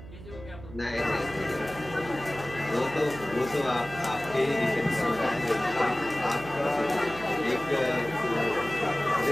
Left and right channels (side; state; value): right; noise; hum, 15 dB below the sound